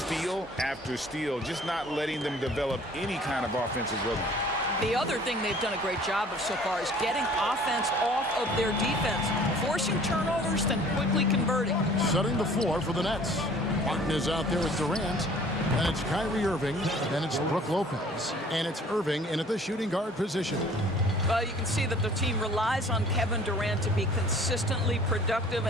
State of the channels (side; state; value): both; normal; correlation 0.51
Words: after steal, just not letting them develop any kind of offensive rhythm. The other thing they've done a great job of so far is getting offense off of their defense, forcing turnovers, then quickly converting. Setting the floor for the Nets. Martin is out there with Durant, and it's Kyrie Irving, then it's Brook Lopez, and it's Irving in at the shooting guard position. Well, you can see that the team relies on Kevin Durant to be consistently productive,